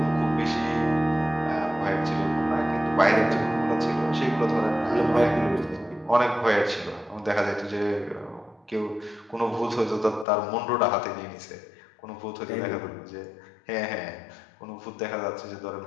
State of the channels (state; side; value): drops out; right; at 10.2 s